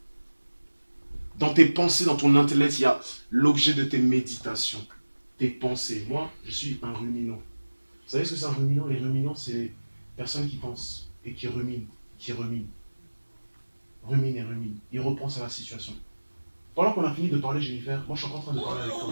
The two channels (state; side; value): inverted; both; correlation -1.00